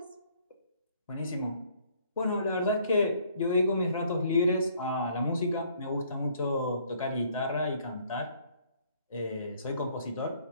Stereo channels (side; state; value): both; inverted; correlation -0.62